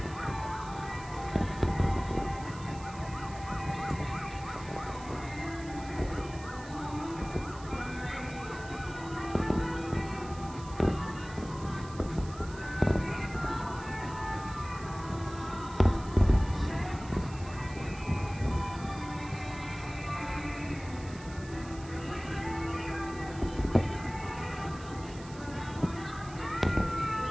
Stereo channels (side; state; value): right; noise; hiss, 19 dB below the sound